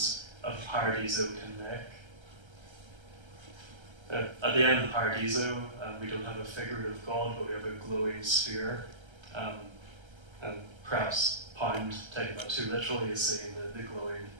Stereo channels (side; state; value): left; late; 1.3 ms